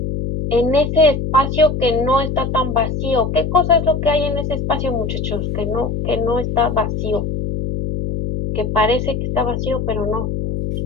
en ese espacio que no está tan vacío. ¿Qué cosa es lo que hay en ese espacio, muchachos? Que no está vacío, que parece que está vacío, pero no.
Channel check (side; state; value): left; noise; hum, 3 dB below the sound